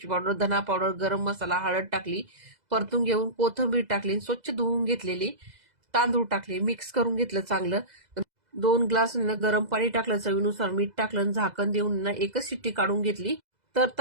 पावडर, धना पावडर, गरम मसाला, हळद टाकली, परतून घेऊन कोथिंबीर टाकली, स्वच्छ धुवून घेतलेली तांदूळ टाकले, मिक्स करून घेतलं चांगलं. 2 ग्लास गरम पाणी टाकलं, चवीनुसार मीठ टाकलं, झाकण देऊन एकच शिट्टी काढून घेतली. तर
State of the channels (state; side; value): late; left; 2.0 ms